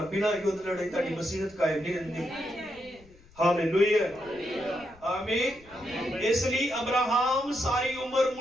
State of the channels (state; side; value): noise; left; rumble, 25 dB below the sound